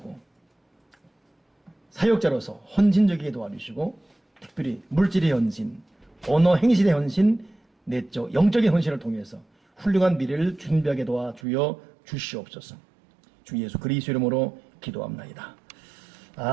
사역자로서 헌신적이게 도와주시고 특별히 물질의 헌신, 언어 행실의 헌신, 내적 영적인 헌신을 통해서 훌륭한 미래를 준비하게 도와주어 주시옵소서. 주 예수 그리스도 이름으로 기도합나이다.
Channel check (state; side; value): drops out; left; at 11.4 s